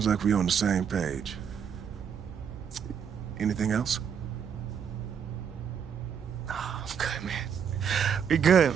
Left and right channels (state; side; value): quieter; left; 7.6 dB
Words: like we're on the same page. Anything else? Oh, I'm good, man. We good,